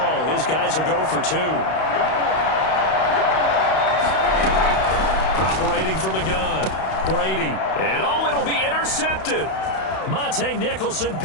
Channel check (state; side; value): late; right; 32 ms